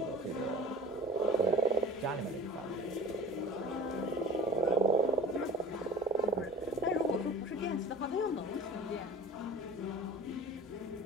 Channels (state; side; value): normal; both; correlation 0.41